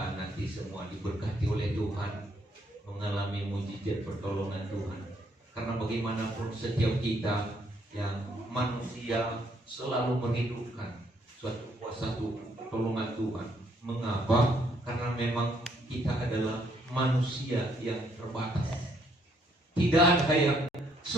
nanti semua diberkati oleh Tuhan, mengalami mujizat pertolongan Tuhan. Karena bagaimanapun setiap kita yang manusia selalu merindukan suatu kuasa pertolongan Tuhan. Mengapa? Karena memang kita adalah manusia yang terbatas. Tidak ada yang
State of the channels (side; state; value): both; normal; correlation 0.69